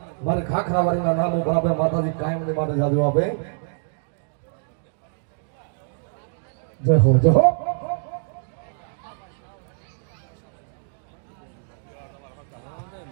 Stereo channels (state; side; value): silent; left; digital silence